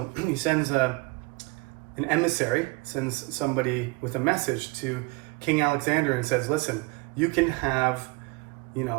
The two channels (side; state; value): left; quieter; 26.8 dB